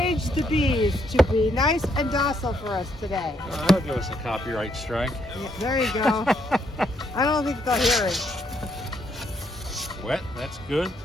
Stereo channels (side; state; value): both; normal; correlation 0.73